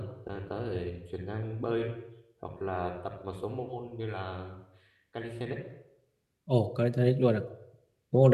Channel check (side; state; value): both; identical; correlation 1.00